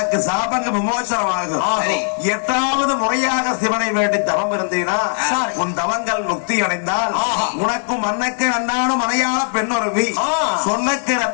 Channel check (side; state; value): right; silent; digital silence